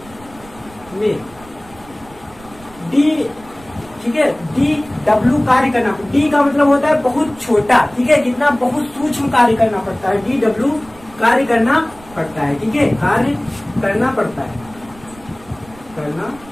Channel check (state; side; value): noise; right; rumble, 23 dB below the sound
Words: में डी, ठीक है, डी डब्ल्यू कार्य करना, डी का मतलब होता है बहुत छोटा, ठीक है, कितना, बहुत सूक्ष्म कार्य करना पड़ता है, डी डब्ल्यू कार्य करना पड़ता है, ठीक है, कार्य करना पड़ता है, करना